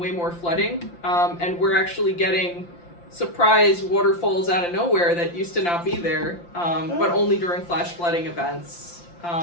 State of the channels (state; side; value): late; right; 5.8 ms